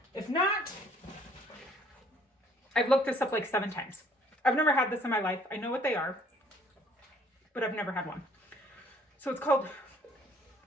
If not, I've looked this up like 7 times. I've never had this in my life. I know what they are, but I've never had one. So it's called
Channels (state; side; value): normal; both; correlation 0.60